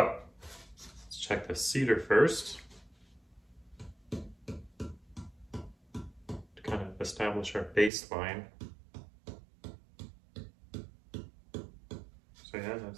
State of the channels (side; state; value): left; drops out; at 7.9 s